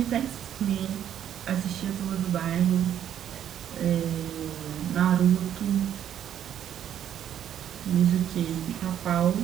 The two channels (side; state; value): left; quieter; 10.1 dB